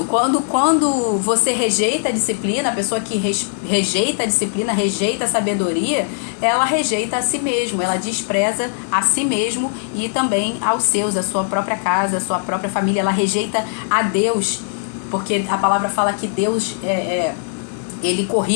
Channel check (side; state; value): right; silent; digital silence